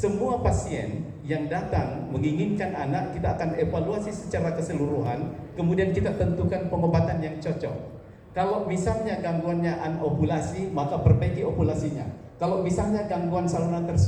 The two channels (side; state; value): both; identical; correlation 1.00